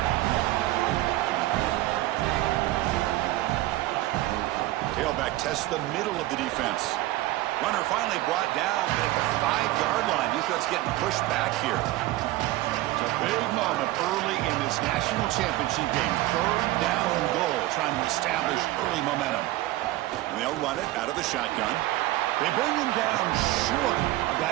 Tailback tests the middle of the defense. Runner finally brought down, but at the 5-yard line, defense getting pushed back here. It's a big moment early in this national championship game. Third down and goal, trying to establish early momentum. And they'll run it out of the shotgun. They bring him down short of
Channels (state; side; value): quieter; left; 17.1 dB